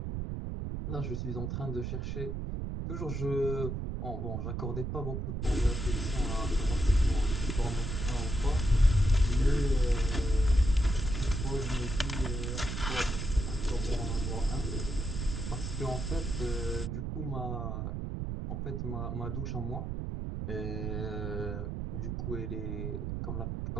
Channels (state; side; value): noise; right; rumble, 3 dB below the sound